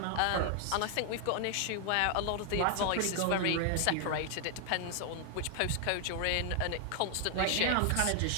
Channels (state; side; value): different; both; correlation 0.00